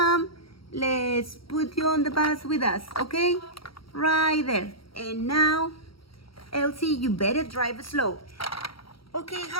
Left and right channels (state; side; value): late; right; 0.75 ms